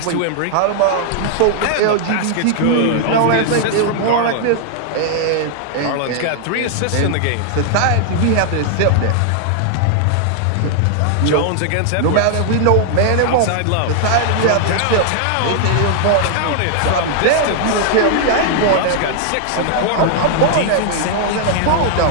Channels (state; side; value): different; both; correlation -0.01